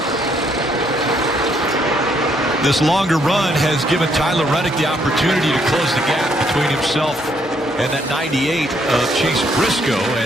This longer run has given Tyler Reddick the opportunity to close the gap between himself and that 98 of Chase Briscoe,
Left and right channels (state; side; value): normal; both; correlation 0.71